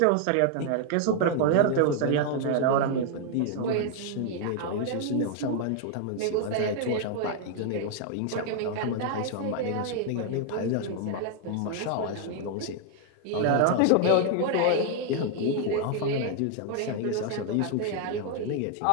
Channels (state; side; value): different; both; correlation 0.00